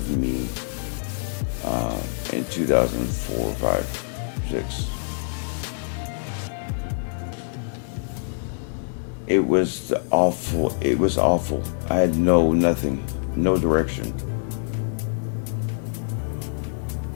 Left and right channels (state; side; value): silent; right; digital silence